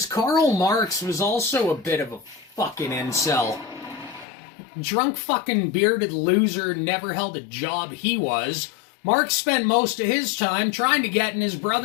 Karl Marx was also a bit of a fucking incel. Drunk fucking bearded loser, never held a job he was. Marx spent most of his time trying to get in his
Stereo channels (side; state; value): right; drops out; at 4.2 s